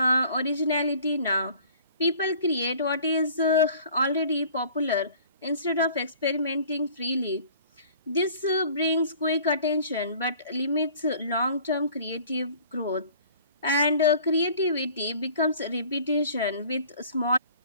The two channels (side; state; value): both; inverted; correlation -0.50